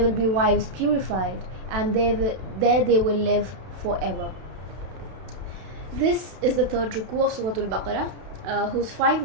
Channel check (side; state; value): left; late; 32 ms